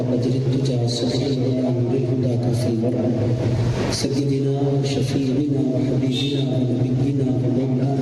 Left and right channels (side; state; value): both; identical; correlation 1.00